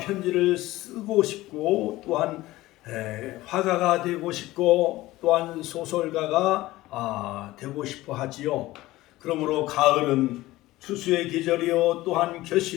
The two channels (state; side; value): quieter; right; 17.5 dB